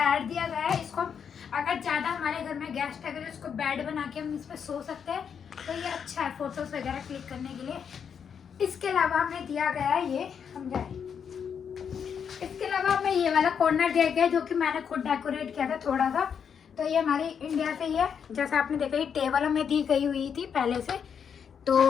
दिया गया है, इसको हम ज़्यादा हमारे घर में गेस्ट अगर इसको बेड बना के हम इस पर सो सकते हैं, तो ये अच्छा है फोटोज़ वगैरह क्लिक करने के लिए। इसके अलावा हमें दिया गया है ये इसके अलावा हमें ये वाला कॉर्नर दिया गया है, जो कि मैंने खुद डेकोरेट किया था थोड़ा सा। तो ये हमारी इंडिया से ही है, जैसा आपने देखा ये टेबल हमें दी गई हुई थी पहले से। तो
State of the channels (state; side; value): quieter; right; 7.3 dB